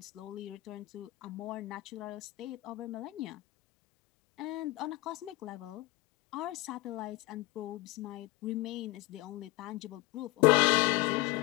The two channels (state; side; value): quieter; right; 21.4 dB